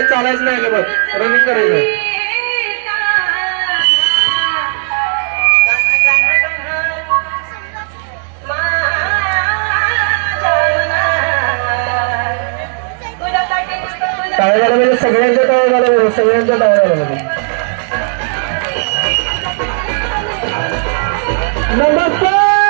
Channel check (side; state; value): left; silent; 57 dB below the other